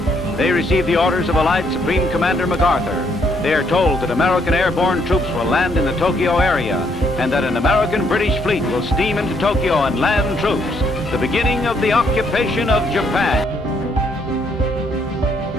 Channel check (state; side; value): normal; both; correlation 0.71